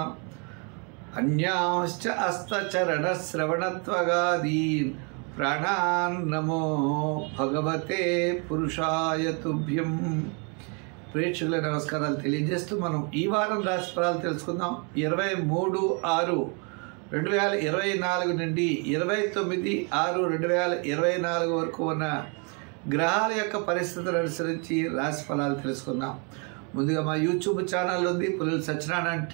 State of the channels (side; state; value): left; quieter; 35.7 dB